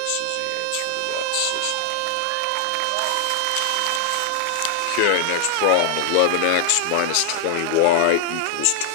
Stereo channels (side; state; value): both; different; correlation 0.00